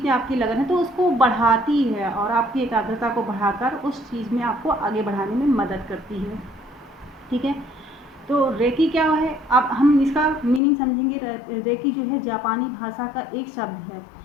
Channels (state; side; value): drops out; right; at 10.6 s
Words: में आपकी लगन है, तो उसको बढ़ाती है और आपकी एकाग्रता को बढ़ाकर उस चीज़ में आपको आगे बढ़ाने में मदद करती है। ठीक है। तो रेकी क्या है? अब हम इसका मीनिंग समझेंगे। रेकी जो है जापानी भाषा का एक शब्द है,